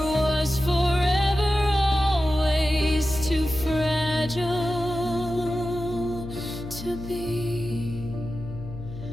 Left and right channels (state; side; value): noise; left; hum, 11 dB below the sound